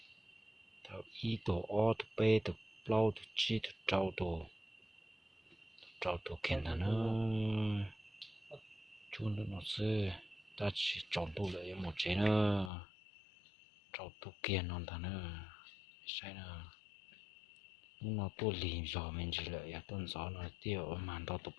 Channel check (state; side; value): drops out; right; at 12.7 s